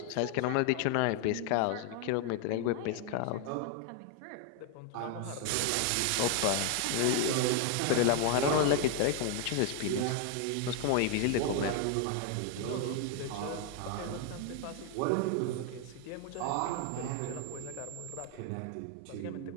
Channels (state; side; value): different; both; correlation 0.00